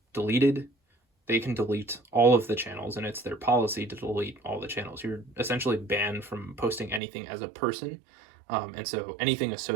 deleted, they can delete all of the channels, and it's their policy to delete all the channels. You're essentially banned from posting anything as a person. And so anything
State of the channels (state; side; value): drops out; left; at 7.0 s